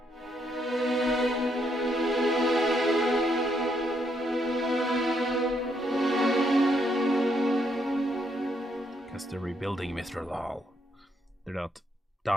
Because they're rebuilding Mithral. They're not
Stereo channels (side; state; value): both; normal; correlation 0.75